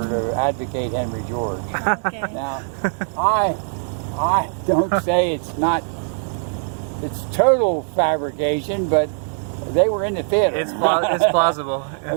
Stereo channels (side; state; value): left; silent; 61 dB below the other